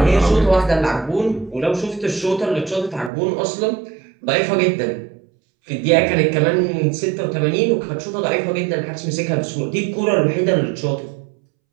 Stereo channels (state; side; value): drops out; left; at 3.1 s